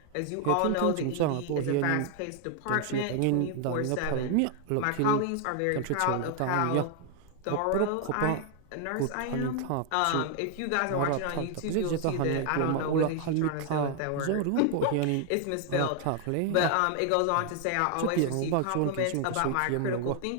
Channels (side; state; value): both; different; correlation 0.00